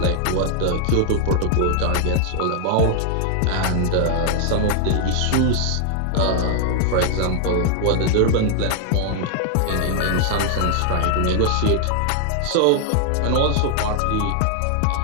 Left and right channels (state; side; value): different; both; correlation 0.00